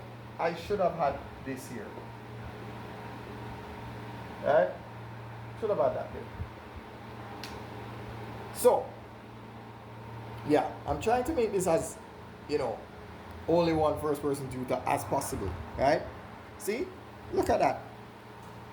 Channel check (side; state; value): both; identical; correlation 1.00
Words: I should have had this here. Right? Should have had that here. So, yeah, I'm trying to make this as, only one first person tutor as possible, right? See? Look at that.